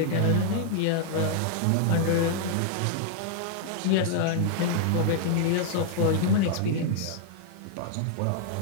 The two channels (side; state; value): both; different; correlation 0.00